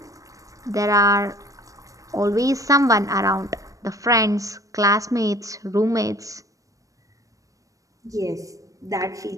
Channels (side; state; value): left; late; 0.16 ms